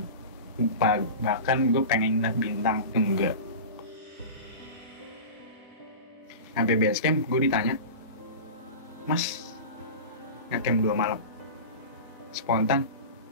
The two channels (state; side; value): inverted; both; correlation -0.31